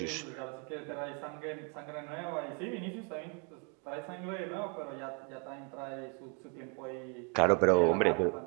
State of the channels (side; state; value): left; quieter; 38.0 dB